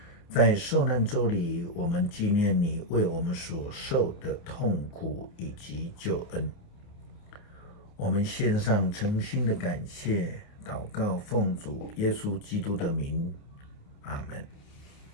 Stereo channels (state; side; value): late; right; 29 ms